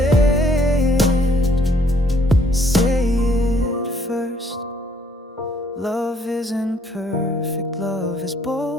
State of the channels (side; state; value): both; normal; correlation 0.64